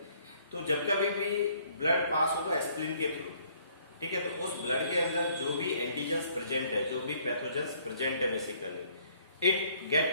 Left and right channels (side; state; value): both; inverted; correlation -0.62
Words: तो जब कभी भी ब्लड पास होगा स्प्लीन के थ्रू, ठीक है, तो उस ब्लड के अंदर जो भी एंटीजेंस प्रेजेंट है, जो भी पैथोजेंस प्रेजेंट है basically, it